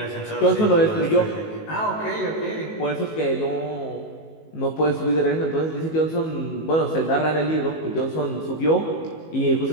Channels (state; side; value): late; right; 19 ms